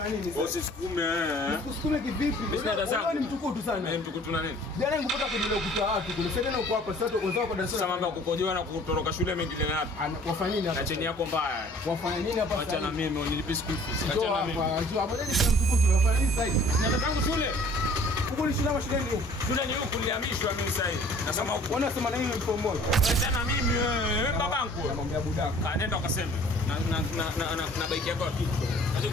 nini? Usisukume. Usisukume kivipi? Wewe ni mtukutu sana. Mimi mtukutu na nini? Jana ningepata kujua kuta watu kule. Sasa ndio uko hapa sasa wenzao kwa darasa. Sasa mambo ya kukojoa na kutoroka shule mengine na hapa. Wafanya nini hapa? Na cheni yako mbaya. Wafanya nini hapa? Acha na mimi unilipe school fees. Acha na mimi. Acha hapo ndio mtukutu. Wafanya nini sasa hivi? Nataka tangu shule. Huko ni shule ama shule ndio? Shule ni huku nilihamishwa mimi sasa hivi. Nasema huko. Wanasema na mimi mtu mmoja. Acha na mimi wewe babangu. Namwambia budaka. Nenda ukasema. Na bike yako kitu. Acha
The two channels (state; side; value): normal; both; correlation 0.52